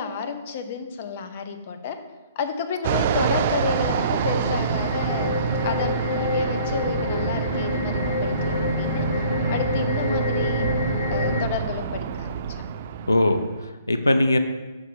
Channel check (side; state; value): both; inverted; correlation -0.56